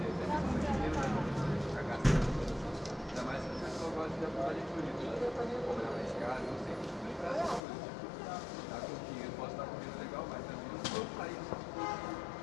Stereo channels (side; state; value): right; drops out; at 7.6 s